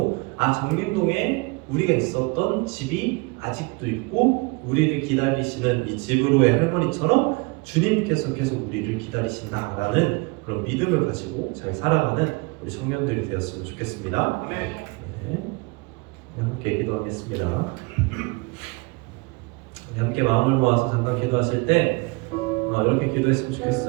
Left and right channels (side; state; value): left; quieter; 27.5 dB